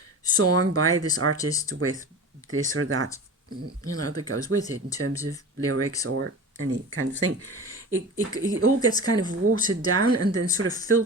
song by this artist with this or that, that goes with it in terms of lyrics or any kind of thing. It all gets kind of watered down and then sort of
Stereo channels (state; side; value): normal; both; correlation 0.33